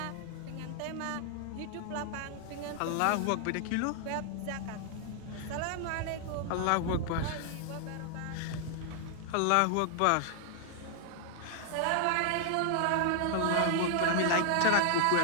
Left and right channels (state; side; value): different; both; correlation 0.00